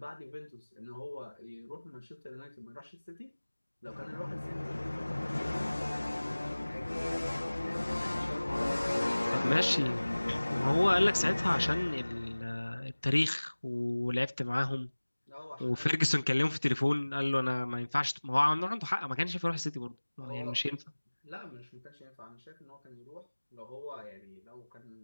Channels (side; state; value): both; inverted; correlation -1.00